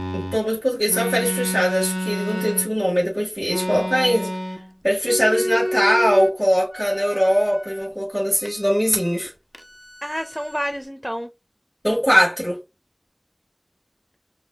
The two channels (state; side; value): identical; both; correlation 1.00